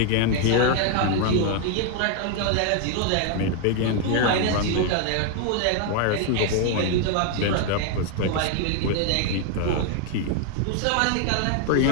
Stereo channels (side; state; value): both; different; correlation 0.00